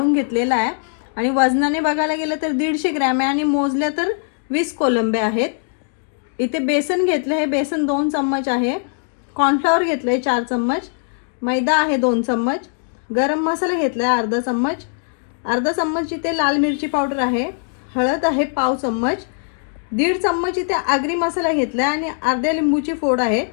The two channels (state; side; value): silent; right; digital silence